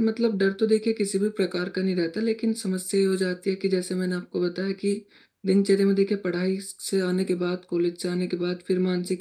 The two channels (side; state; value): both; identical; correlation 1.00